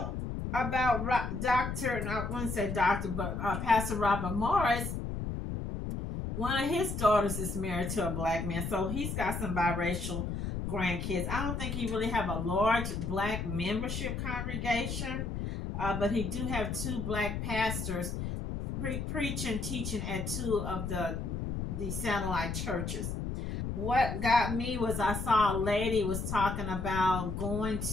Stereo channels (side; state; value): left; noise; rumble, 4 dB below the sound